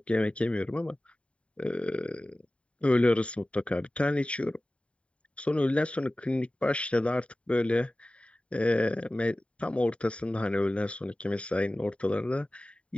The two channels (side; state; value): right; late; 0.061 ms